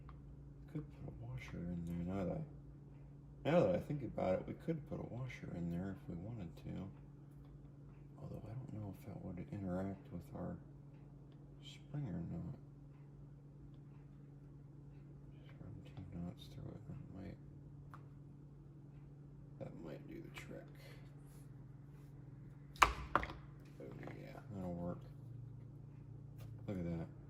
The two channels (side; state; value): both; identical; correlation 1.00